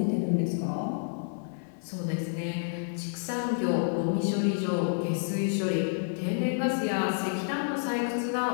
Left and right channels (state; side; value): silent; right; 58 dB below the other